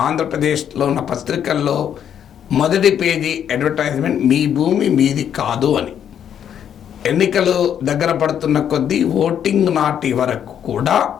ఆంధ్రప్రదేశ్లో ఉన్న పత్రికల్లో మొదటి పేజీ అడ్వర్టైజ్మెంట్ మీ భూమి మీది కాదు అని. ఎన్నికలు దగ్గర పడుతున్న కొద్దీ ఓటింగ్ నాటి వరకు కూడా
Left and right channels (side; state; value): right; quieter; 9.1 dB